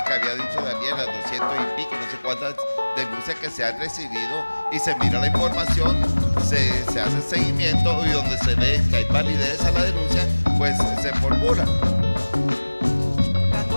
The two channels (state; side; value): inverted; both; correlation -1.00